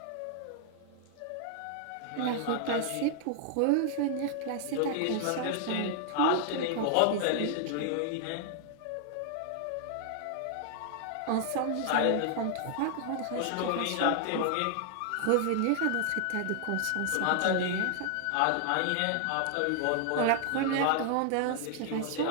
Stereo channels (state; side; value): different; both; correlation 0.00